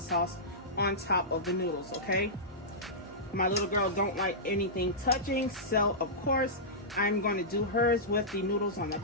on top of the noodles, okay? My little girl don't like anything touching, so of course I'm going to do hers with the noodles on the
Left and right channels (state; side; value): normal; both; correlation -0.15